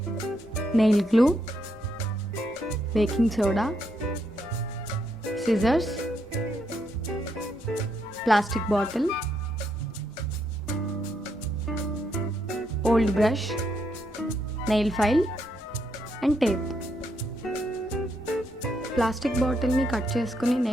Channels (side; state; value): both; normal; correlation 0.77